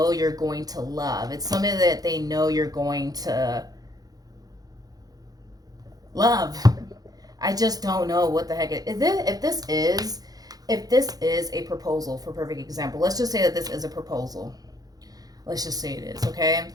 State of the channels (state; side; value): late; left; 0.18 ms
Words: you're going to love. It's something that they know you're going to love. I just don't know what the heck it is. If this is a proposal, for perfect example, let's just say that this is a proposal. Let's just say it is, okay?